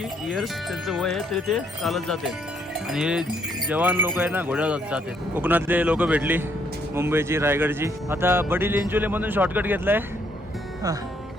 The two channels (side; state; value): both; normal; correlation 0.70